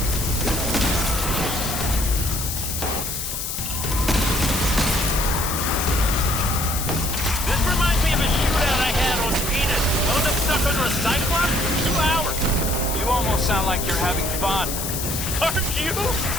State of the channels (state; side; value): noise; left; hiss, 4 dB below the sound